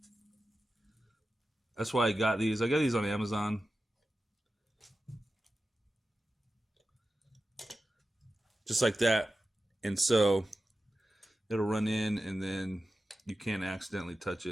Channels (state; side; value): normal; both; correlation 0.93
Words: That's why I got these. I got these on Amazon. Just like that. And so it'll run in and then you can't accidentally touch